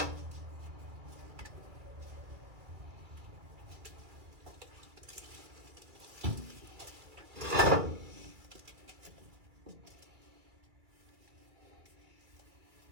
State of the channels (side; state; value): left; late; 2.4 ms